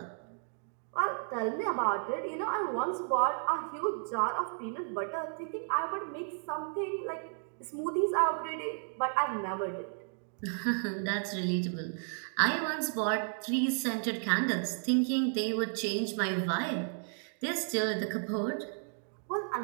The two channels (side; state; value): left; silent; 56 dB below the other